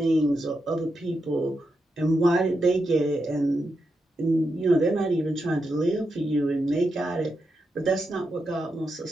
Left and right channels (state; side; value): normal; both; correlation 0.86